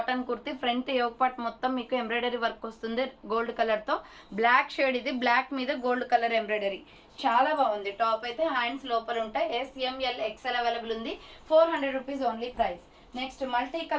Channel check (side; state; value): both; identical; correlation 1.00